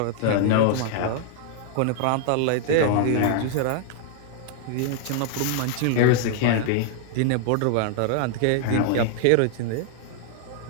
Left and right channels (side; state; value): both; different; correlation 0.00